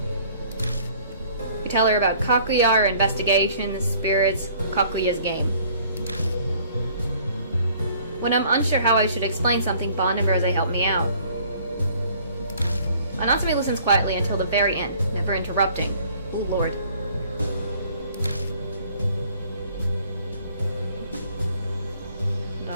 We tell her about Kakuya, our investigation, the spirits, Kakuya's game. When I'm unsure how I should explain something, Bon and Rose help me out. Natsumi listens quietly until the very end, never interrupting. Oh lord.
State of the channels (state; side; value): inverted; both; correlation -0.56